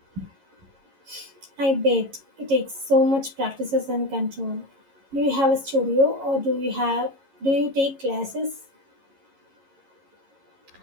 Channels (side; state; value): left; late; 11 ms